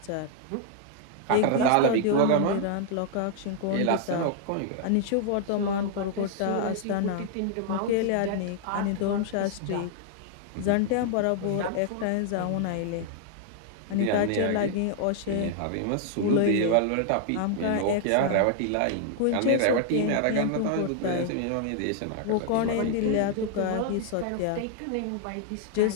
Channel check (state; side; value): different; both; correlation 0.00